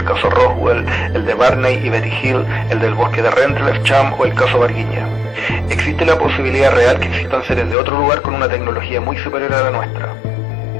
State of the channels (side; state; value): right; drops out; at 7.8 s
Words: caso Roswell, el de Barney y Betty Hill, el del bosque de Rendlesham o el caso Varginha. Existe la posibilidad real que existan seres de otro lugar con una tecnología muy superior a la nuestra.